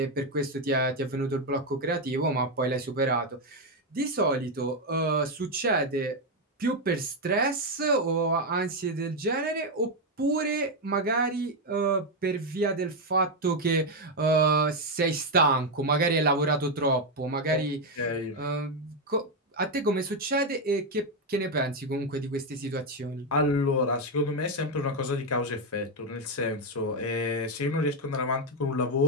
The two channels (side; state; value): both; normal; correlation 0.05